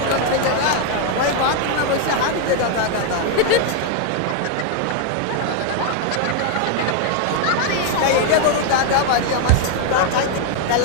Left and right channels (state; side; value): different; both; correlation 0.01